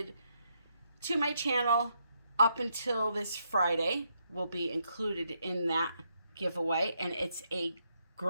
to my channel up until this Friday, will be included in that giveaway. And it's a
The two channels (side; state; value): both; inverted; correlation -0.77